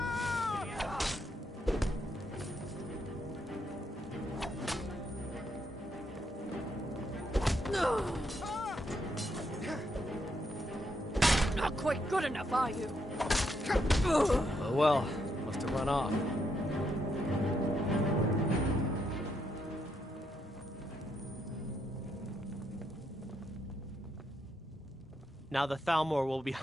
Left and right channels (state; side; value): normal; both; correlation 0.78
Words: Not quite good enough, are you? Oh well, must have run off. Now the Thalmor will be